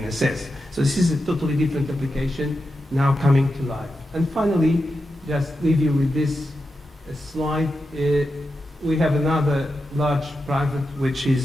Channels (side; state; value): both; normal; correlation 0.89